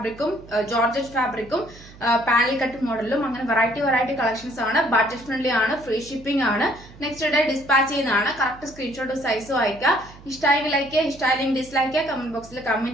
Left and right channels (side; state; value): right; noise; hum, 20 dB below the sound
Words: georgette ഫാബ്രിക്കും panel cut മോഡലും അങ്ങനെ വെറൈറ്റി കളക്ഷൻസ് ആണ്. ബഡ്ജറ്റ് ഫ്രണ്ട്ലി ആണ്, ഫ്രീ ഷിപ്പിംഗ് ആണ്. നെക്സ്റ്റ് ഡേ ഡിസ്പാച്ച് ചെയ്യുന്നതാണ്. കറക്റ്റ് സ്ക്രീൻഷോട്ട് സൈസും അയക്കുക. ഇഷ്ടമായെങ്കിൽ ലൈക്ക് ചെയ്യുക, ഇഷ്ടമായില്ലെങ്കിൽ ഡിസ്ലൈക്ക് ചെയ്യുക, കമന്റ് ബോക്സിൽ